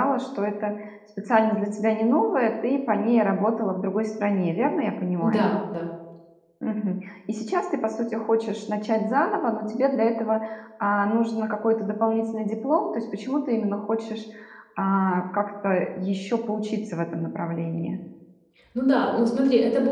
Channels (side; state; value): both; identical; correlation 1.00